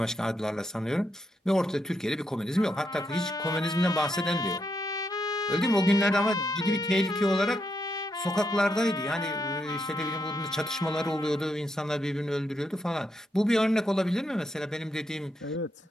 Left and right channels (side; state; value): both; normal; correlation 0.81